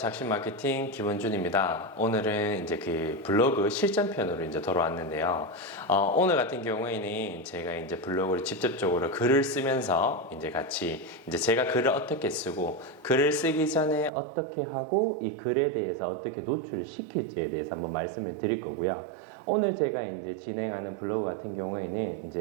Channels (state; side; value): drops out; left; at 14.1 s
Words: 마케팅 김원준입니다. 오늘은 이제 그 블로그 실전편으로 이제 돌아왔는데요. 오늘 같은 경우에는 제가 이제 블로그를 직접적으로 글을 쓰면서 이제 같이 이제 제가 글을 어떻게 쓰고 글을 쓰기 전에 어떻게 하고 이 글에 대해서 어떻게 노출을 시킬지에 대해서 한번 말씀을 드릴 거고요. 오늘 제가 이제 진행하는 블로그 같은 경우에는